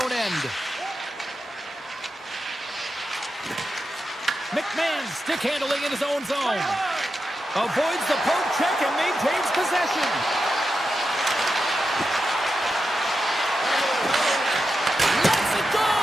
end. McMahon stick handling in his own zone. Avoids the poke check and maintains possession.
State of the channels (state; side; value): normal; both; correlation 0.89